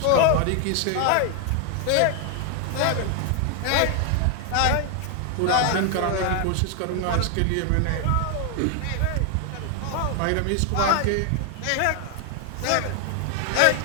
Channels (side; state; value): both; different; correlation 0.00